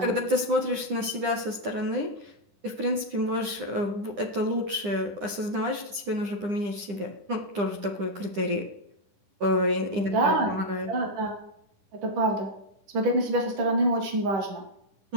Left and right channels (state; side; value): late; left; 9.9 ms